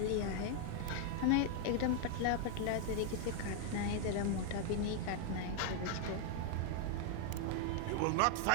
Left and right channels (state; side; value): different; both; correlation 0.00